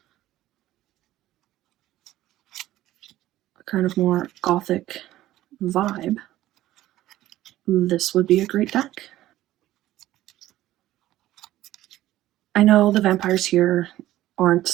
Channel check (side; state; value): left; quieter; 14.7 dB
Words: a kind of more gothic vibe, this would be a great deck. I know the vampires here aren't